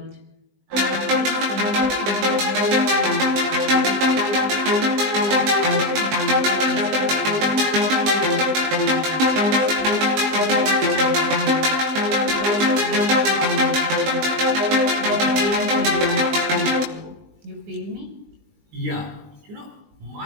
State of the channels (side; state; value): left; late; 20 ms